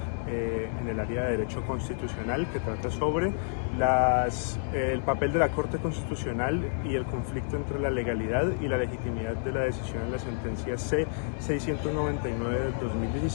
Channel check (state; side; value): silent; right; digital silence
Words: en el área de Derecho Constitucional que trata sobre el papel de la Corte Constitucional y el conflicto entre la legalidad y la legitimidad de la decisión en la sentencia C-699 del